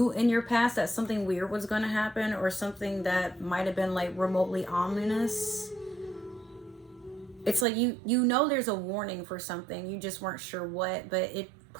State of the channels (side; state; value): left; drops out; at 7.7 s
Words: in your past that something weird was going to happen, or something that might have been like remotely ominous. It's like you know there's a warning for something, you just weren't sure what, but it